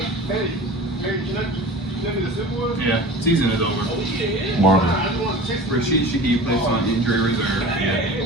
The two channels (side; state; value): both; normal; correlation 0.38